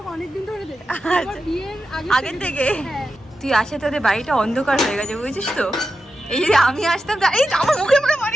অনেকদিন ধরে দেখি। আচ্ছা, আগের থেকে? তুই আসে তোদের বাড়িটা অন্ধকার হয়ে গেছে, বুঝেছিস তো? এই যদি আমি আসতাম, এই আমার মুখে মুখে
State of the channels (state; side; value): normal; both; correlation 0.90